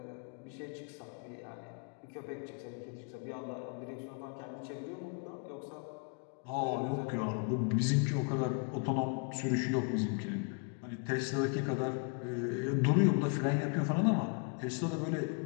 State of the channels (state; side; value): quieter; right; 37.2 dB